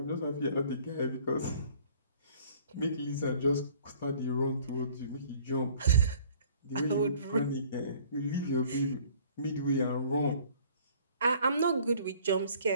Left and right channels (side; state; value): both; inverted; correlation -0.55